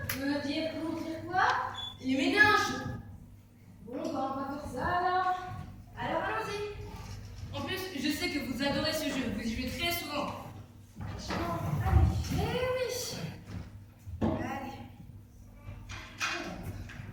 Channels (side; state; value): both; identical; correlation 1.00